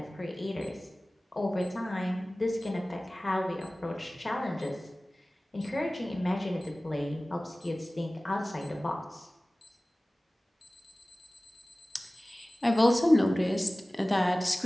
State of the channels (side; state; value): both; normal; correlation 0.98